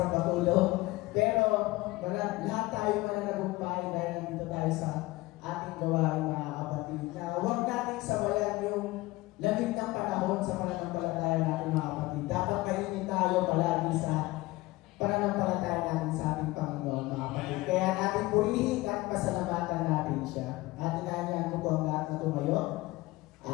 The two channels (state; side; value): quieter; right; 20.1 dB